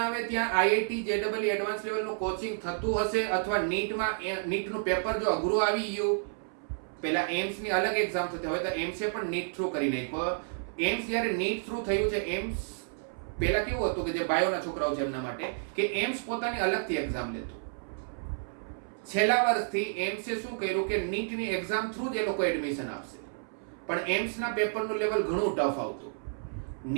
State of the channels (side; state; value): left; silent; 57 dB below the other